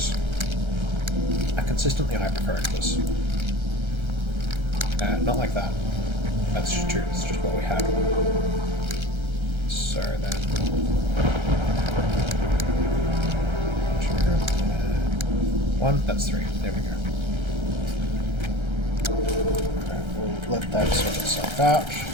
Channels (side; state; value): left; late; 1.3 ms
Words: I consistently hypercurrent this. Not like that. That's just true. It's just what we had. So then... 1, that's 3. There we go. Alright, we'll let that sort itself out.